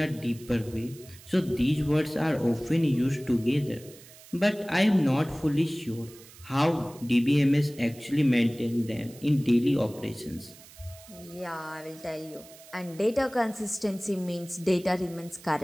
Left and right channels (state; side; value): noise; right; hiss, 21 dB below the sound